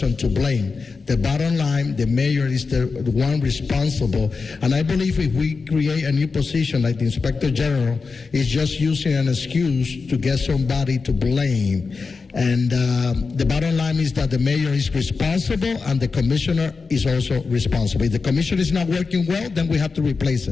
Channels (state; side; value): quieter; right; 4.6 dB